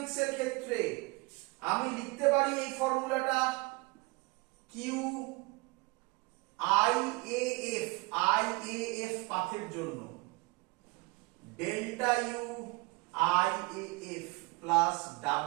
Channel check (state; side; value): quieter; left; 25.7 dB